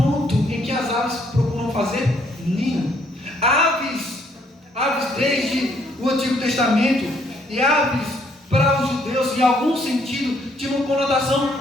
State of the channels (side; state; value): both; normal; correlation 0.68